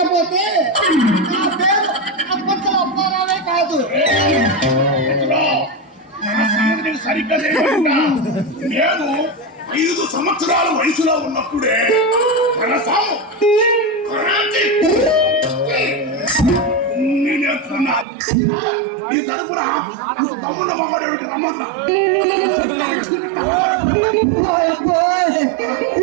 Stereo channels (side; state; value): left; drops out; at 18.1 s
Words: నా పేరు అప్పచ్చల అప్పారావే కాదు. సరిగ్గా నేను 5 సంవత్సరాల వయసులో ఉన్నప్పుడే నేర్చుకున్నా. ఈ తరపున తమ్ముడు మమ్మడు రమ్మన్నా